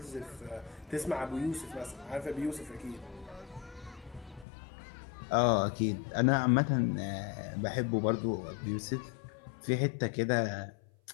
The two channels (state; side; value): drops out; right; at 4.5 s